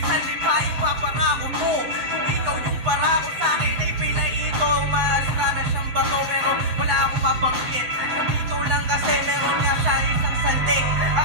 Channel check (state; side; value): late; left; 8.1 ms